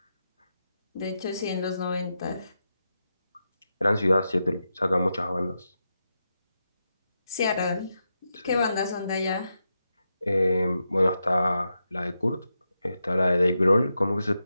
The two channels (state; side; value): inverted; both; correlation -0.87